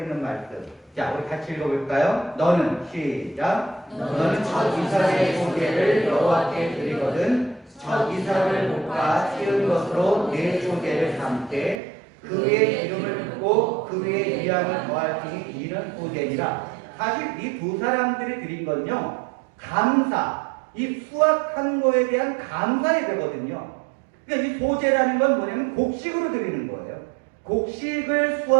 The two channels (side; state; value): left; drops out; at 11.8 s